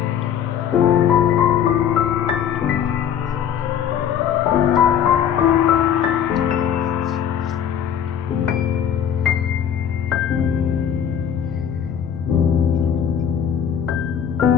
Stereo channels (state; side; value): quieter; right; 8.8 dB